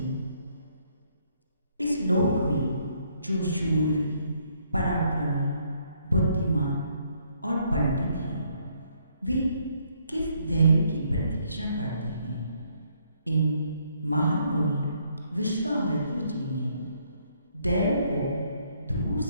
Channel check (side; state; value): both; inverted; correlation -0.69